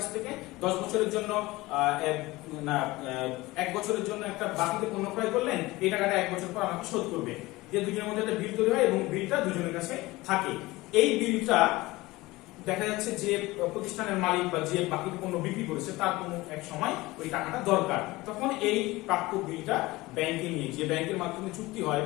থেকে 10 বছরের জন্য 1 বছরের জন্য একটা বাকিতে পণ্য ক্রয় করলেন, এই টাকাটা 1 বছর পর আমাকে শোধ করবে। যে দুজনের মধ্যে একটা বিল তৈরি হয় এবং বিলটা দুজনের কাছে থাকে। এই বিলটা দেখা যাচ্ছে যে প্রতিষ্ঠানের মালিক বা যে বাকি পণ্য বিক্রি করেছে তার কোনো এক সময় ওই টাকাটা দরকার, তখন এই প্রাপ্য বিলটা ব্যাংকে নিয়ে, যে ব্যাংকের মাধ্যমে চুক্তি হয়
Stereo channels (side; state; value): right; quieter; 20.2 dB